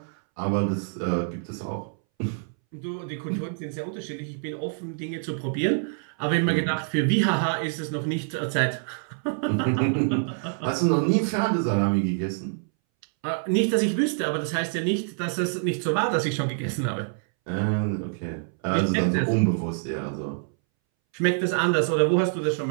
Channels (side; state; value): left; silent; 61 dB below the other